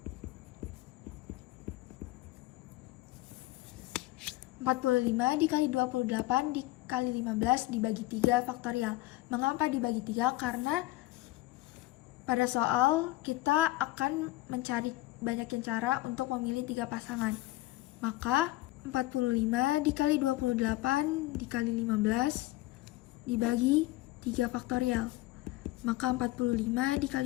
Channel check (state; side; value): quieter; right; 18.2 dB